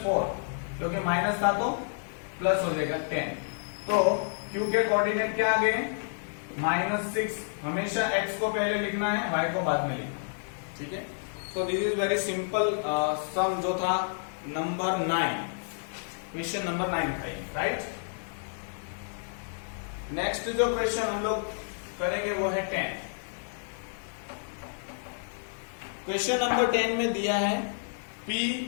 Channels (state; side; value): silent; right; 58 dB below the other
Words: 4, क्योंकि माइनस था तो प्लस हो जाएगा 10। तो Q के कोऑर्डिनेट क्या आ गए, -6। हमेशा x को पहले लिखना है, y को बाद में लिखना, ठीक है। So this is very simple सम जो था नंबर 9, क्वेश्चन नंबर 9 था, राइट। नेक्स्ट जो क्वेश्चन हम लोग करेंगे वो है 10। क्वेश्चन नंबर 10 में दिया है P